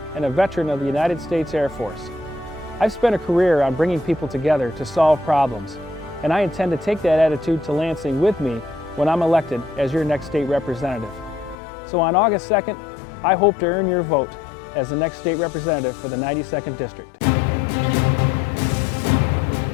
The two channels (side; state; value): right; drops out; at 11.6 s